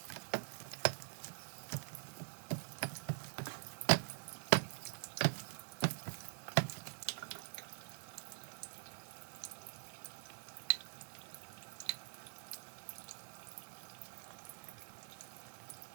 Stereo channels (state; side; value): silent; left; digital silence